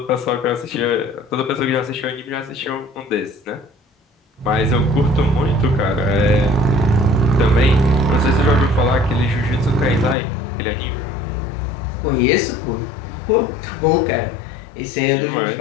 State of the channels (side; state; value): right; drops out; at 10.2 s